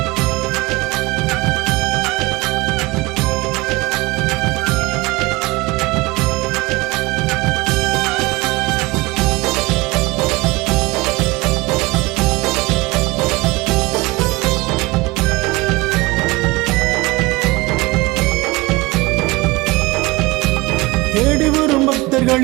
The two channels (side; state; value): left; quieter; 22.7 dB